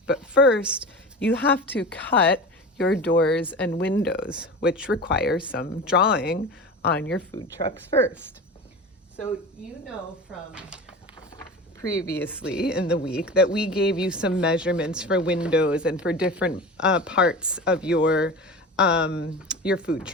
But first, you have to cut your doors and windows, which require some drawing on your food trucks first. So you know from previously in the week that we gave you some measurements for windows and for different parts of your food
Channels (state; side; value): normal; both; correlation 0.32